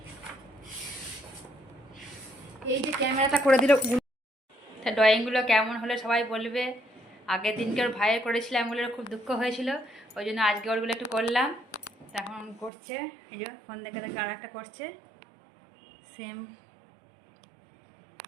এই যে ক্যামেরাটা করে দিল। তা ড্রয়িংগুলো কেমন হলে সবাই বলবে। আগের দিনকে ওর ভাইয়ের করেছিলাম, ওগুলোর খুব দুঃখ হয়েছিল, ওই জন্য আজকে ওরগুলো একটু করলাম। তখন করছে, এই যে ফোন দেখে দেখে আর একটা করছে সেম।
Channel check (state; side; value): drops out; left; at 12.7 s